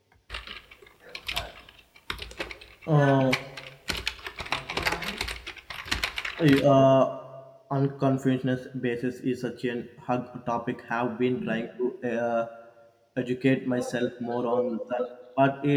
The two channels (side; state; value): both; identical; correlation 1.00